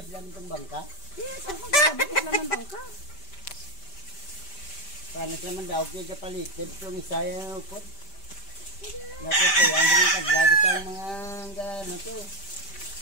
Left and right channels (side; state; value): right; late; 5.1 ms